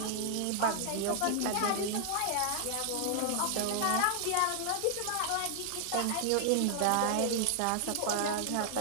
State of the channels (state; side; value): different; both; correlation 0.00